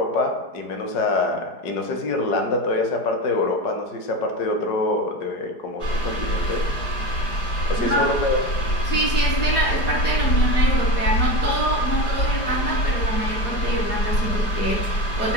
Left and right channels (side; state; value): right; late; 4.8 ms